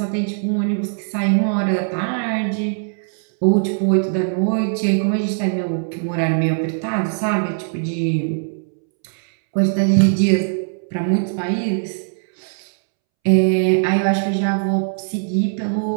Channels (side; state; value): left; silent; 66 dB below the other